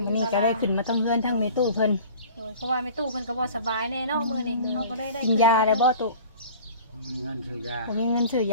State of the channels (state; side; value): inverted; both; correlation -0.44